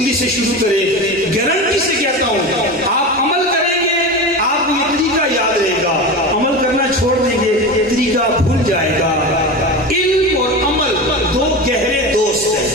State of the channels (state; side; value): normal; both; correlation 0.26